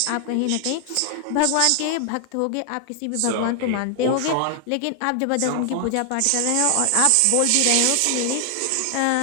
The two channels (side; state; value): both; different; correlation 0.00